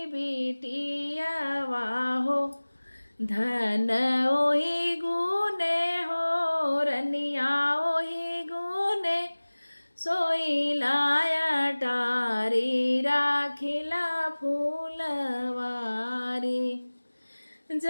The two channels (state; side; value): inverted; both; correlation -1.00